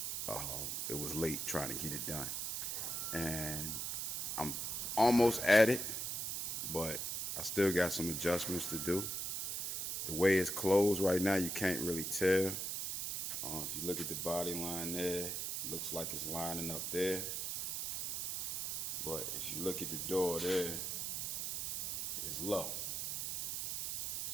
it was late trying to get it done. And I'm almost at it, but I still got some adjustments to do. The way it's closed right now, you can't really tell. If you look at the body line there, it looks like it's lining up there. But if you look at the door there, it's low.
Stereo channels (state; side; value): noise; right; hiss, 2 dB below the sound